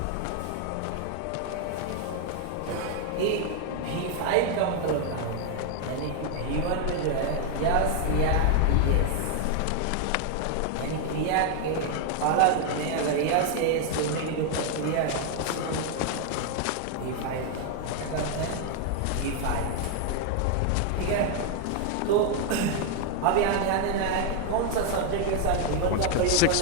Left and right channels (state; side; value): different; both; correlation 0.00